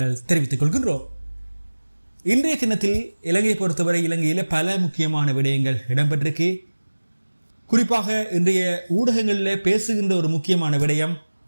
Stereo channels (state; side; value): inverted; both; correlation -1.00